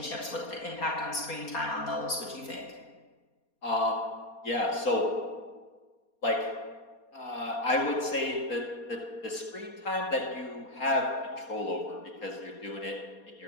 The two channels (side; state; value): right; late; 4.2 ms